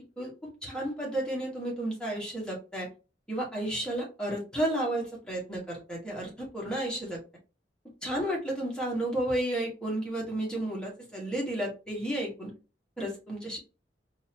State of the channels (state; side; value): normal; both; correlation 0.64